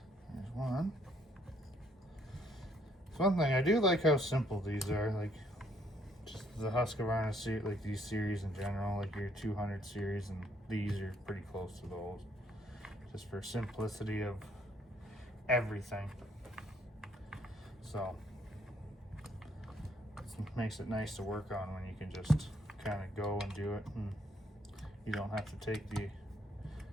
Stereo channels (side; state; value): both; normal; correlation 0.67